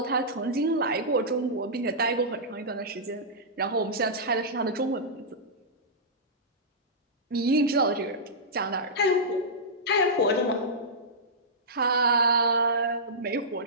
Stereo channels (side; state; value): both; normal; correlation -0.14